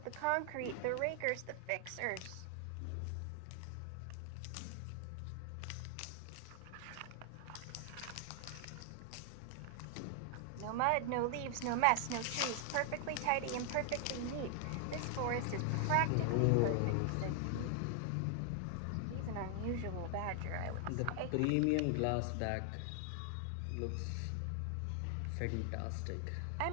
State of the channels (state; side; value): different; both; correlation 0.00